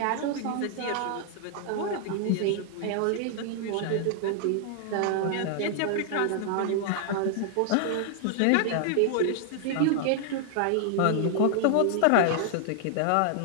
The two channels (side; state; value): both; different; correlation 0.00